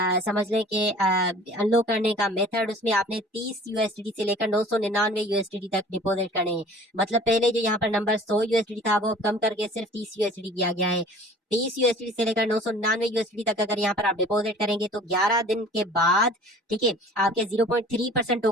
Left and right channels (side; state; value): both; normal; correlation 0.47